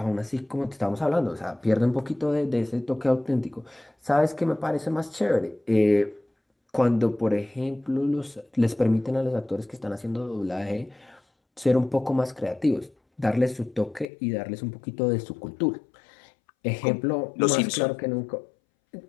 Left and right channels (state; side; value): drops out; right; at 14.1 s